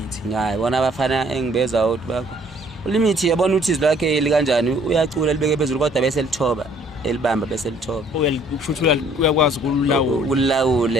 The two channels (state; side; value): normal; both; correlation 0.59